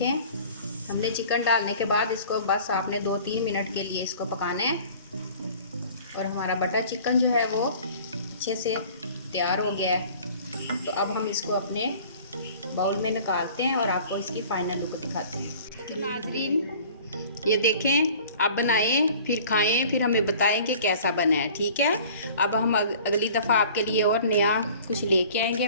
हमने चिकन डालने के बाद इसको बस आपने 2-3 मिनट के लिए इसको पकाना है, और हमारा बटर चिकन जो है वो अच्छे से तैयार हो गया है। तो अब हम इसको अपने बाउल में निकालते हैं और आपको इसकी फाइनल लुक दिखाते हैं। नाजरीन ये देखें, आप बनाएं फिर खाएं, फिर हमें बताएं कि कैसा बना है, ठीक है। अब हम अगली दफ़ा आपके लिए और नया कुछ लेके आएंगे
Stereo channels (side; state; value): both; inverted; correlation -0.48